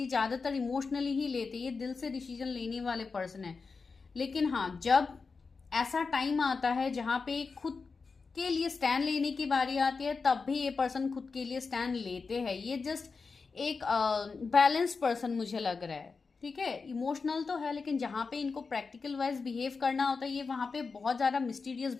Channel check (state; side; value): quieter; right; 4.6 dB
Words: ज़्यादातर इमोशनली ही लेते, ये दिल से डिसीजन लेने वाले पर्सन है। लेकिन हाँ, जब ऐसा टाइम आता है जहाँ पे खुद के लिए स्टैंड लेने की बारी आती है, तब भी ये पर्सन खुद के लिए स्टैंड लेते हैं। ये जस्ट एक बैलेंस पर्सन मुझे लग रहा है, ठीक है। इमोशनल तो है, लेकिन जहाँ पे इनको प्रैक्टिकल वाइज बिहेव करना होता है, ये वहाँ पे बहुत ज़्यादा मिस्टीरियस